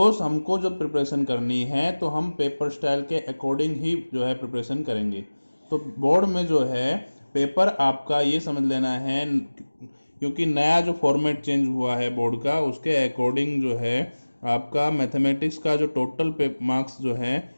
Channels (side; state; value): both; inverted; correlation -1.00